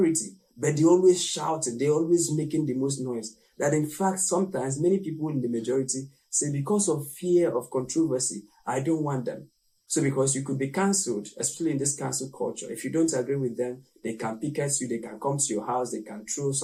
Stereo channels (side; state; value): both; identical; correlation 1.00